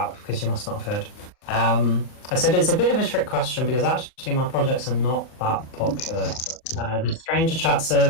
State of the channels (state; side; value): late; right; 39 ms